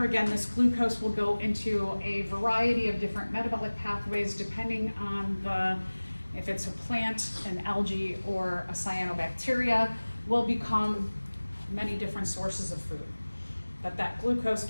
again, this glucose will go into a variety of different metabolic pathways depending on if it's a plant, an algae, or a cyanobacteria, will become many different sources of food. But that glucose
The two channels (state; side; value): inverted; both; correlation -1.00